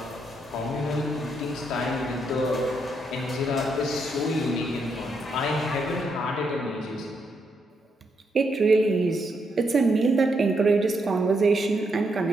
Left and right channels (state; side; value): normal; both; correlation 0.78